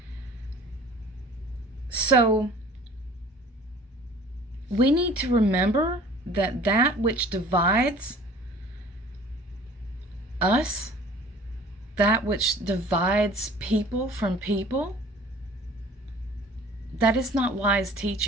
So, we need to remember that that which divides us, that which divides people from people, that is not wise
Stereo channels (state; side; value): normal; both; correlation 0.48